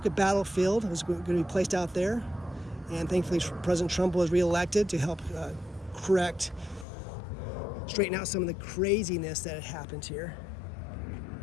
Battlefield. It was going to be placed out there. And thankfully, President Trump was reelected to help straighten out some of the craziness that had happened here.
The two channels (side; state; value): right; drops out; at 6.9 s